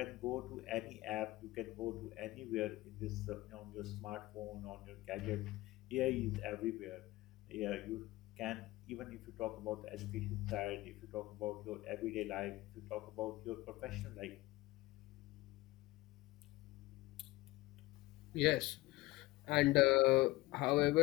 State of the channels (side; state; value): right; quieter; 19.0 dB